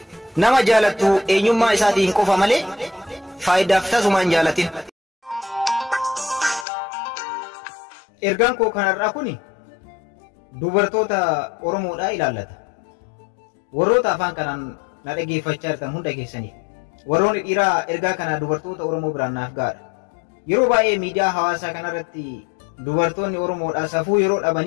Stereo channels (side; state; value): right; drops out; at 6.7 s